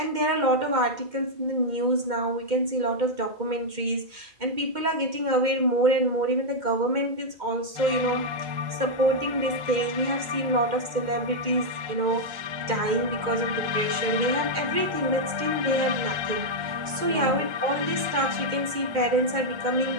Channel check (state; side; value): late; left; 2.1 ms